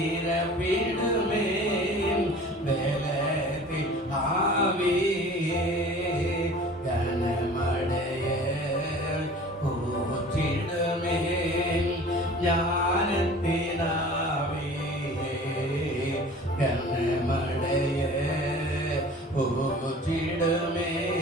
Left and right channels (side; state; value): both; normal; correlation 0.44